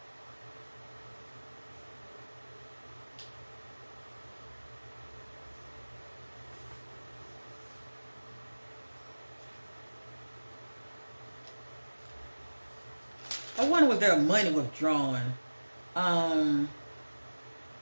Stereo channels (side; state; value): both; inverted; correlation -1.00